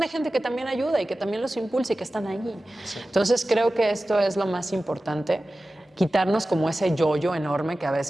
gente que también ayuda y que también los impulsa y que están allí. Sí. Entonces creo que esto es lo más importante, quitarnos como ese yo-yo enorme que a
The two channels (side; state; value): both; normal; correlation 0.95